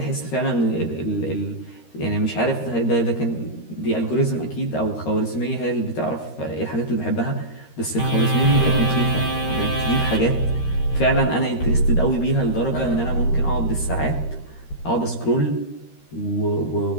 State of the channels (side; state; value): right; late; 13 ms